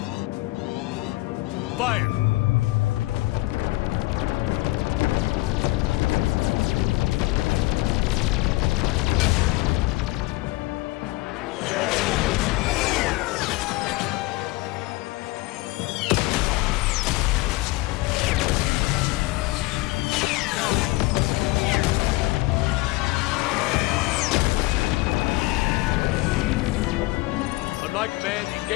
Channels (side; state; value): right; quieter; 20.7 dB